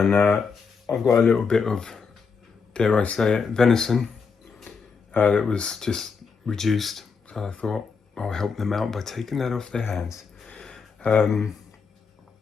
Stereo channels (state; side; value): quieter; right; 5.4 dB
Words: I've got a little bit of, dare I say it, venison that was just reduced. So I thought I'll help them out by taking that off their hands.